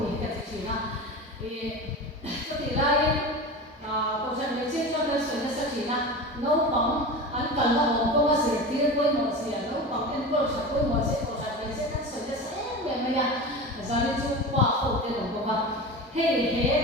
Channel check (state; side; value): normal; both; correlation 0.29